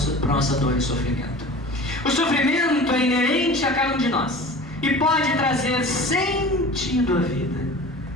dor e sofrimento. O sofrimento é inerente a cada um de nós e pode trazer sentido à vida,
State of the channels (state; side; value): normal; both; correlation 0.38